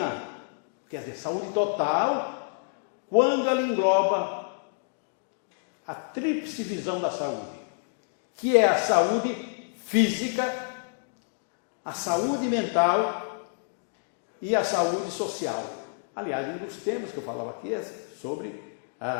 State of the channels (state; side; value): silent; right; digital silence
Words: quer dizer, saúde total, quando ela engloba a tríplice visão da saúde, que é a saúde física, a saúde mental e a saúde social. Aliás, um dos temas que eu falava aqui é sobre